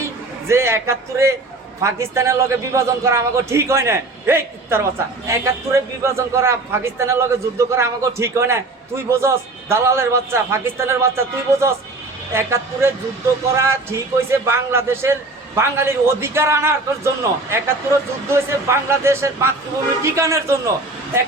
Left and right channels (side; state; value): left; quieter; 3.1 dB